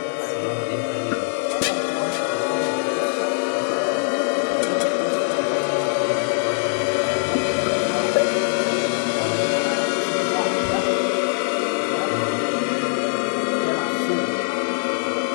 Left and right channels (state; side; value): silent; right; 56 dB below the other